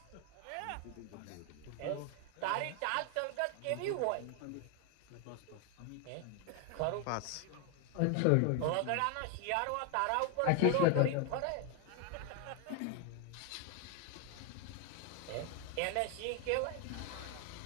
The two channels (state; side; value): different; both; correlation 0.01